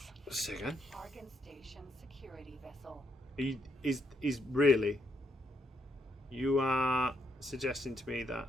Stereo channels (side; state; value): both; normal; correlation 0.78